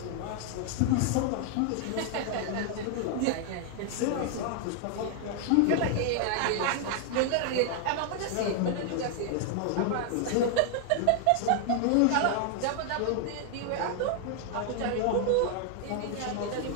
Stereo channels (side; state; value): both; different; correlation 0.00